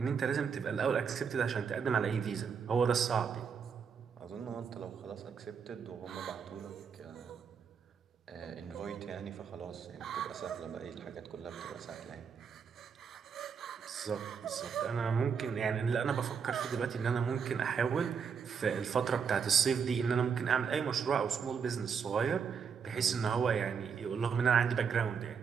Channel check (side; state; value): left; quieter; 6.5 dB